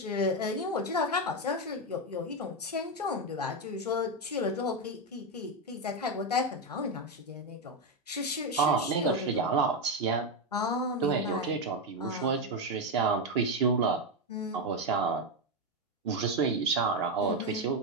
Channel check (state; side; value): normal; both; correlation 0.07